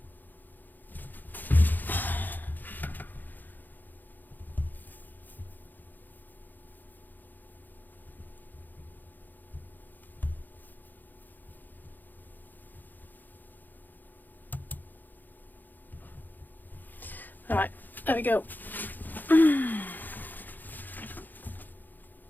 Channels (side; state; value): right; late; 0.087 ms